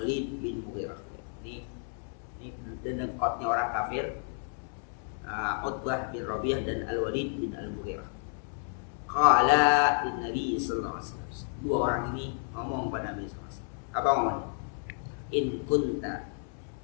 bin Mughirah. Ini dekatnya orang kafir. Utbah bin Rabi'ah dan Al-Walid bin Al-Mughirah. Qala lin Nabi sallallahu alaihi wasallam. Dua orang ini ngomong pada Nabi sallallahu alaihi wasallam. Apa ngomongnya? In kunta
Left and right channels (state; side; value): silent; right; 57 dB below the other